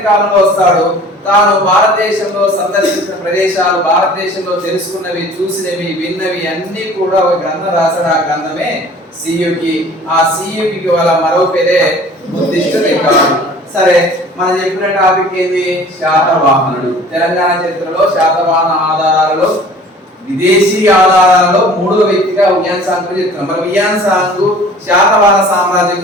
కాలంలో వస్తాడు. తాను భారతదేశంలో సందర్శించిన ప్రదేశాలు, భారతదేశంలో తెలుసుకున్నవి, చూసినవి, విన్నవి అన్ని కూడా ఒక గ్రంథం రాశాడు. ఆ గ్రంథమే సియుకి. ఆ సియుకి వాళ్ళ మరో పేరే బుద్ధిస్ట్ రికార్డు. సరే, మనం చెప్పిన టాపిక్ ఏంది? శాతవాహనుడు. తెలంగాణ చరిత్రలో శాతవాహన ఆధారాలలో, విదేశీ ఆధారాలలో 3వ వ్యక్తిగా హ్యూయన్ సాంగ్ గురించి చెప్తున్నాం. మరి హ్యూయన్ సాంగ్ శాతవాహన సామ్రాజ్యం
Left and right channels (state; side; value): normal; both; correlation 0.47